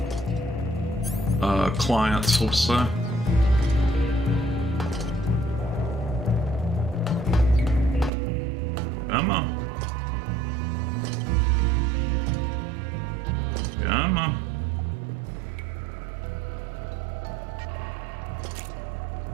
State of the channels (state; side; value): drops out; left; at 8.1 s